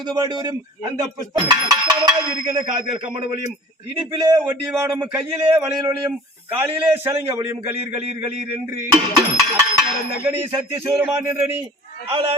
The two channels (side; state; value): both; normal; correlation 0.45